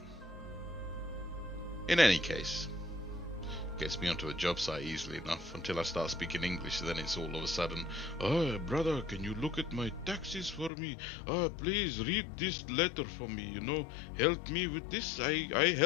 In any case, gets me onto a job site easily enough until I start speaking English. Then it's all of a sudden, "Oh, brother, can you look at my taxes for me? Oh, please read this letter for me, you know, help me with this, I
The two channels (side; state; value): right; drops out; at 10.7 s